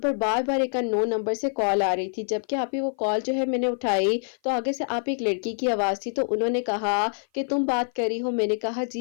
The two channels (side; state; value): right; silent; 56 dB below the other